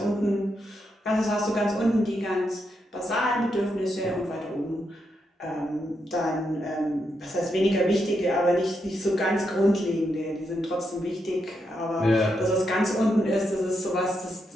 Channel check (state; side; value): normal; both; correlation 0.82